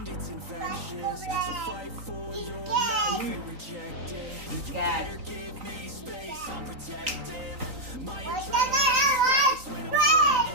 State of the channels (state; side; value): late; left; 3.9 ms